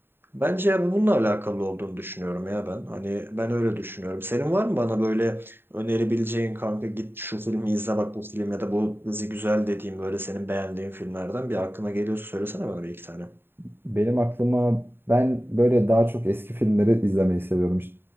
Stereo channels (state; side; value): late; left; 0.11 ms